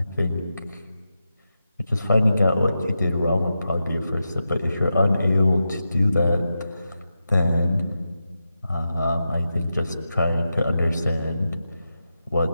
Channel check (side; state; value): both; inverted; correlation -0.89